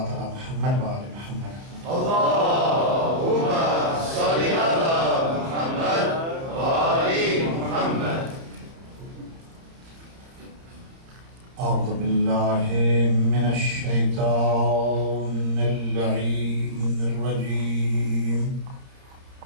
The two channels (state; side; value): late; left; 30 ms